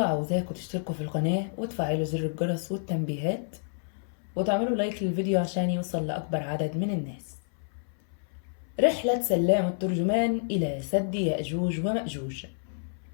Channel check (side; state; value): right; silent; 59 dB below the other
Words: تشتركوا في القناة وتفعلوا زر الجرس والتنبيهات وتعملوا لايك للفيديو عشان يوصل لأكبر عدد من الناس. رحلة سلام الترجمان إلى سد يأجوج ومأجوج.